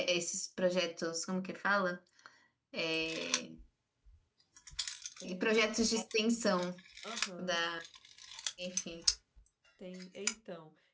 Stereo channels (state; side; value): identical; both; correlation 1.00